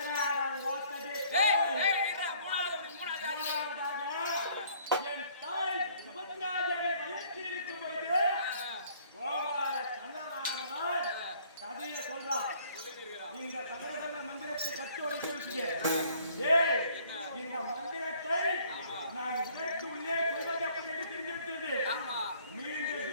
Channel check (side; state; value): both; inverted; correlation -0.59